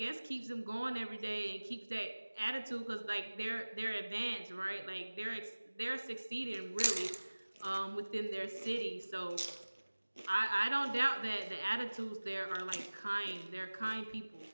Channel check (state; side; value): inverted; both; correlation -1.00